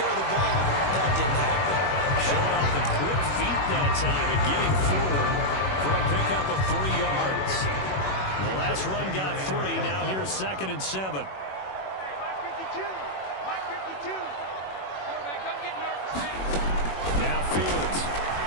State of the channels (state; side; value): late; right; 21 ms